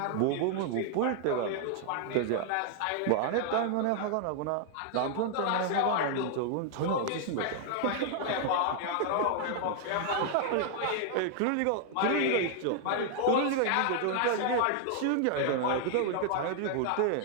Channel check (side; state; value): both; different; correlation 0.00